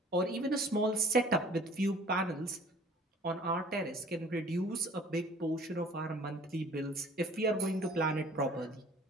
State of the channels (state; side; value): normal; both; correlation 0.51